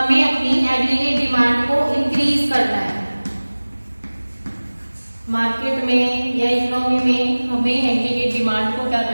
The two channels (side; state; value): both; inverted; correlation -1.00